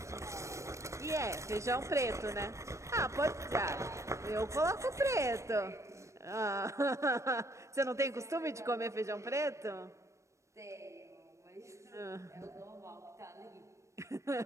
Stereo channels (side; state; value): left; late; 0.15 ms